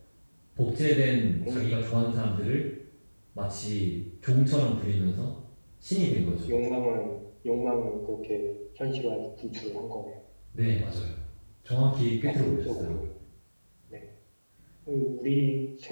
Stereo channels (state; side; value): inverted; both; correlation -1.00